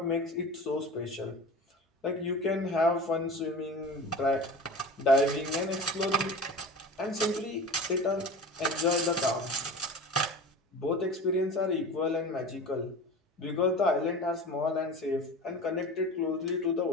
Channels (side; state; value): both; normal; correlation 0.34